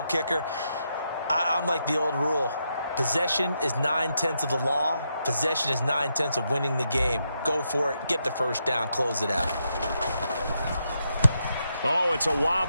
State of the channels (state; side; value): inverted; both; correlation -0.82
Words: kicker. I'm like the old rule. Possession is 9/10 of the law. Possession is 9/10 of winning the game. Go for it. Get the first down. Close it out. Oh, it's a